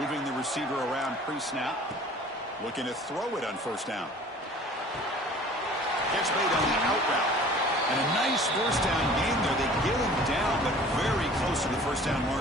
the receiver around pre-snap. Looking to throw it on first down. Catch made on the out route. And a nice first down gain there. They get him down, but very close to the first down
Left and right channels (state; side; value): normal; both; correlation 0.47